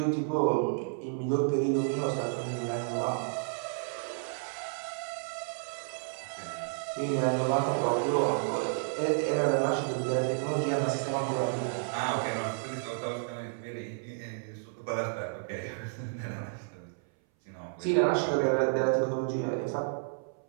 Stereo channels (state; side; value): silent; left; 57 dB below the other